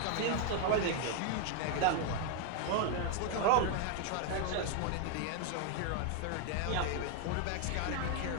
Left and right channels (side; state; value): both; different; correlation 0.01